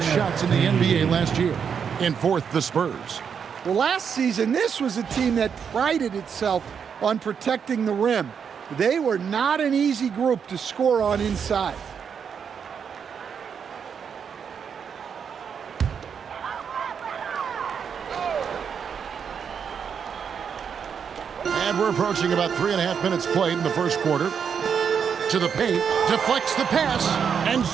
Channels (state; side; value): quieter; left; 7.0 dB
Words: shots in the NBA last year. In 4th, the Spurs. Well, last season, this was a team that prided itself on protecting the rim. They were not an easy group to score on inside. And we're approaching about 3.5 minutes played in the first quarter. To the paint, deflects the pass, and